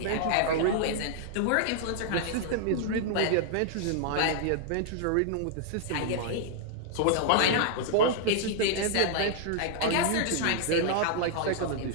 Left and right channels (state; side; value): different; both; correlation -0.01